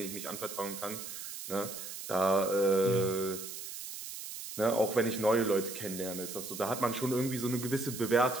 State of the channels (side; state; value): right; noise; hiss, 9 dB below the sound